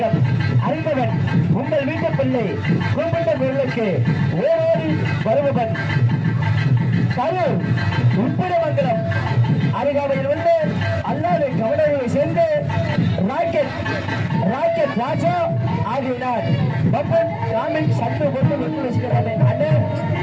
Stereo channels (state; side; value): identical; both; correlation 1.00